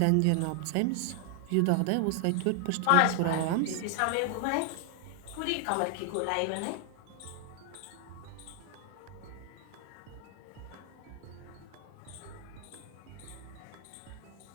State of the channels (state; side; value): different; both; correlation 0.00